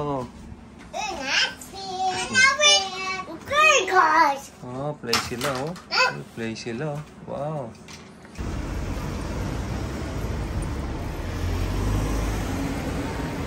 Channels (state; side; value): identical; both; correlation 1.00